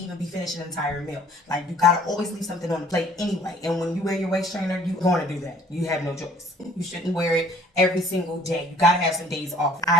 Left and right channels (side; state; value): both; normal; correlation 0.56